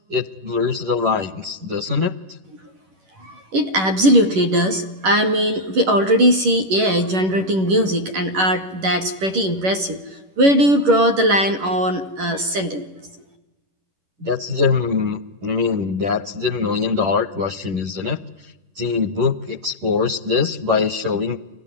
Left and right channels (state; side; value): late; left; 11 ms